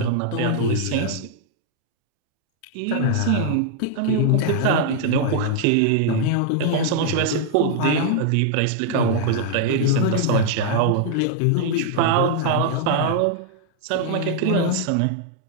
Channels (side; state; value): both; different; correlation -0.01